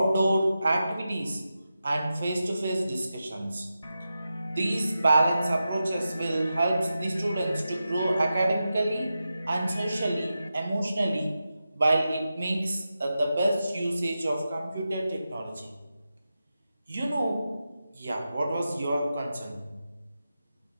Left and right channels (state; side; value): inverted; both; correlation -0.91